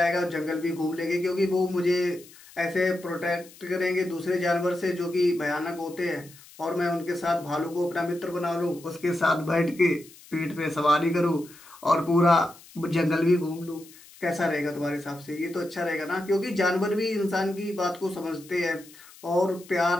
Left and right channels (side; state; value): left; noise; hiss, 22 dB below the sound